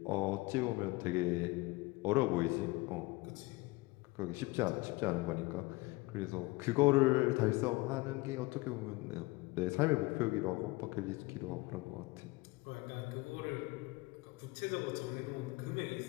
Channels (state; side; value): quieter; right; 22.4 dB